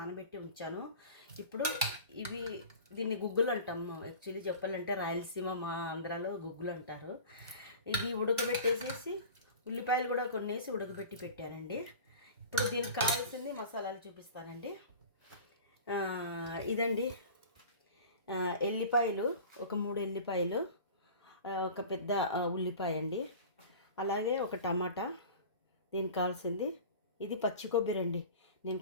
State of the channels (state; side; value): inverted; both; correlation -0.38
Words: ఉంచాను. ఇప్పుడు దీన్ని గుగ్గులు అంటాము. యాక్చువల్లీ చెప్పాలంటే రాయలసీమ, మా ఆంధ్రాలో గుగ్గులు అంటారు. ఇది ఉడకబెట్టేసేసి ఉల్లిపాయలు కూడా కొన్ని వేసి ఉడకబెట్టి పెట్టానండి. ఇప్పుడు దీనికి కావాల్సింది మసాలాలు చూపిస్తానండి. ఇదండి, ఎల్లిపాయలు ఒక 3 ఎల్లిపాయలు, ఒక పెద్ద ఉల్లిపాయ అండి, అలాగే ఒక టమాటా. దీనికి కావాల్సింది ఇది పచ్చి కొబ్బరి అండి. నేను